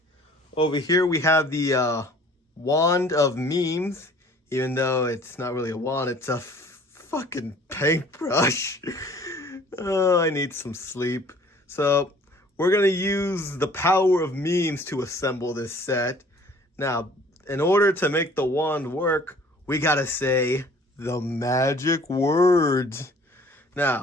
Over here we have the wand of memes, even though it's not really a wand, it's a fucking paintbrush. Oh, I need some sleep. So, we're going to use the power of memes to assemble this set. Now, in order to make the wand work, we got to say the magic words.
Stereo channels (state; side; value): normal; both; correlation 0.52